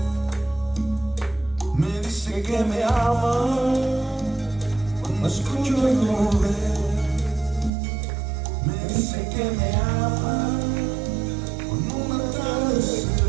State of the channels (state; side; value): drops out; left; at 7.7 s